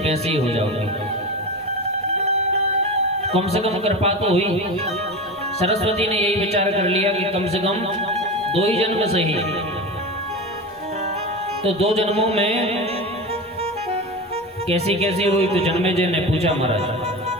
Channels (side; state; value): both; normal; correlation 0.25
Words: ही हो जाओगी। कम से कम कृपा तो हुई। सरस्वती ने यही विचार कर लिया कि कम से कम 2 ही जन्म सही। तो 2 जन्मों में कैसी कैसी हुई? तो जन्मेजय ने पूछा महाराज,